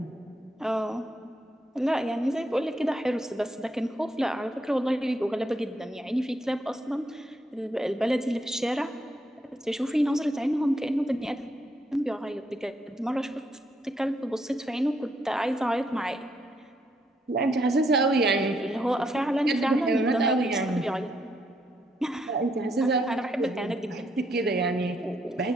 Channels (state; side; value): normal; both; correlation 0.75